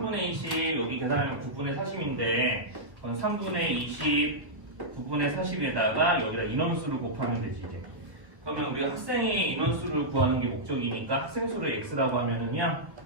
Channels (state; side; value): late; left; 1.3 ms